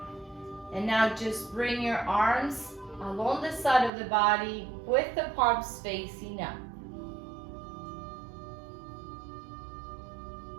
And now just bring your arms along the side of the body with the palms facing up.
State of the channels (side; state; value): left; drops out; at 3.9 s